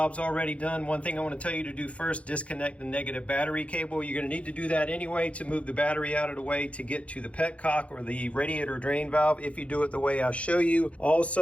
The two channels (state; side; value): late; right; 0.063 ms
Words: already done. One thing I want to tell you to do first, disconnect the negative battery cable. You're going to need to do that anyway to move the battery out of the way to get to the petcock or the radiator drain valve if you do it the way I show you.